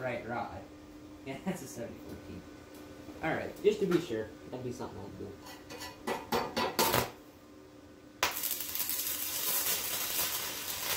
rod. Yeah, that's a 7014. Alright, just to be sure. That'd be something I'd do.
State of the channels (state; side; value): identical; both; correlation 1.00